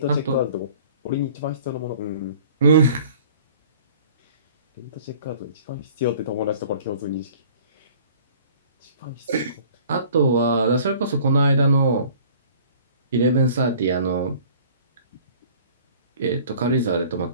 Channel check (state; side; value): inverted; both; correlation -0.50